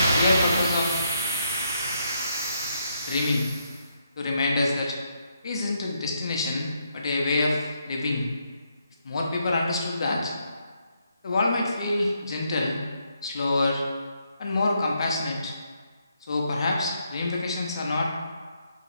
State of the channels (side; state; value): both; inverted; correlation -0.76